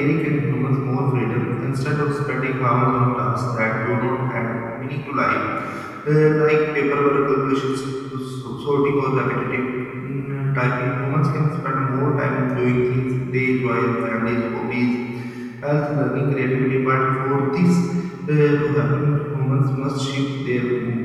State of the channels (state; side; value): identical; both; correlation 1.00